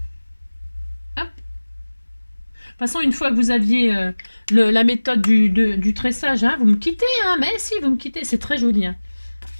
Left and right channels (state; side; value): inverted; both; correlation -1.00